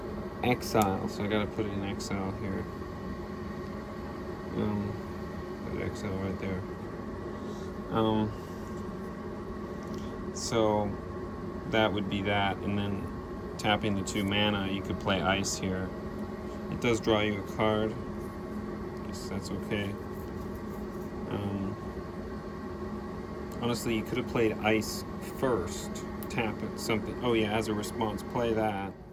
Exile, so I gotta put it in exile here. Put exile right there. So that would be that, and then tapping the 2 mana, you could play ice here. It does draw you a card. Guess that's okay. Honestly, you could have played ice first, tap it, something. Oh yeah, as a response, play that.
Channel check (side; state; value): both; identical; correlation 1.00